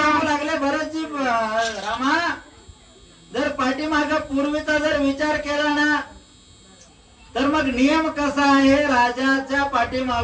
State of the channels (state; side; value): identical; both; correlation 1.00